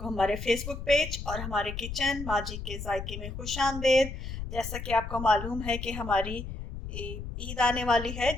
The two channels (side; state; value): left; noise; rumble, 7 dB below the sound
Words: हमारे फेसबुक पेज और हमारे किचन माजी के जायके में खुश आमदेद। जैसा कि आपको मालूम है कि हमारी ईद आने वाली है,